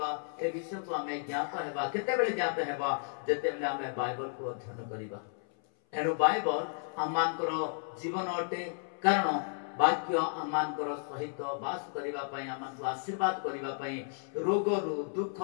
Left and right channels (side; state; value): right; silent; 56 dB below the other